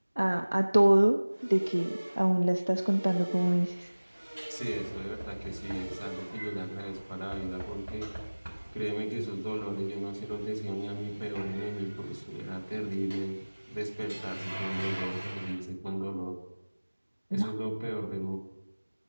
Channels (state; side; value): inverted; both; correlation -1.00